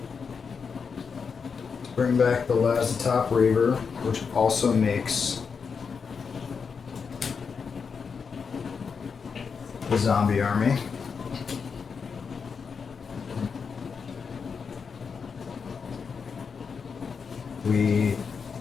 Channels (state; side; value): quieter; right; 5.8 dB